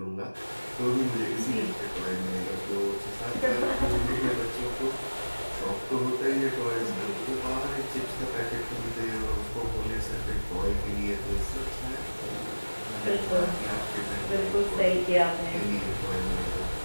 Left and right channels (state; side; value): inverted; both; correlation -1.00